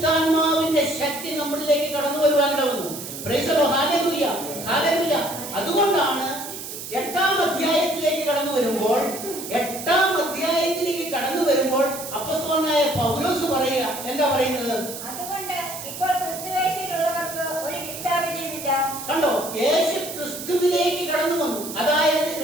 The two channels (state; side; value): noise; right; hiss, 9 dB below the sound